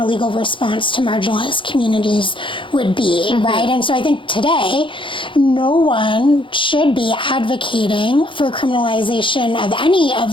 legal response to marginalized communities would be, right? And so I think today, no one should be advocating for criminalization of any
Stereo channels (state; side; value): late; right; 0.25 ms